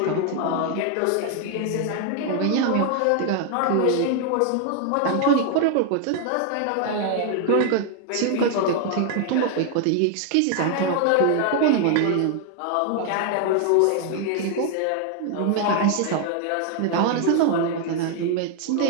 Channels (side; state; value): both; different; correlation 0.00